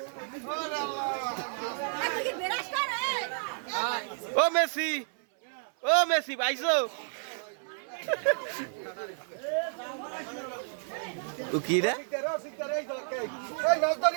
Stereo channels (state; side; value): silent; left; 57 dB below the other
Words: ও মেসি পাইছো? ও কি রে?